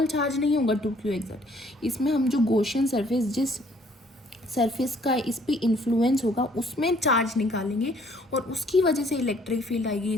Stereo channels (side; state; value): both; normal; correlation 0.62